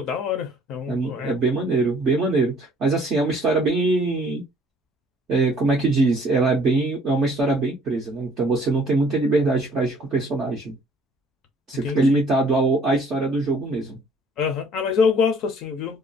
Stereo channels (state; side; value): normal; both; correlation 0.57